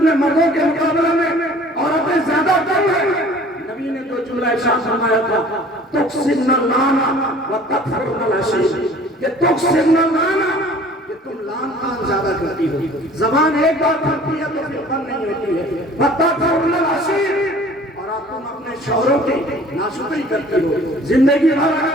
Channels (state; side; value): normal; both; correlation 0.49